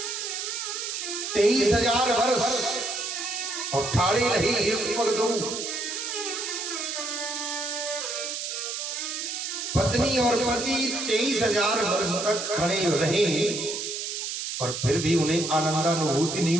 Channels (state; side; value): noise; right; hiss, 4 dB below the sound